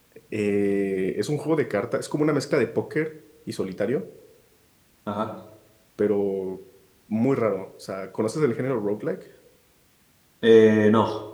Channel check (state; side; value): identical; both; correlation 1.00